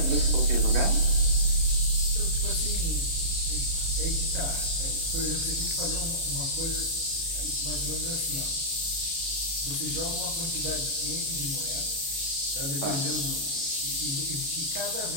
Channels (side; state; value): left; late; 37 ms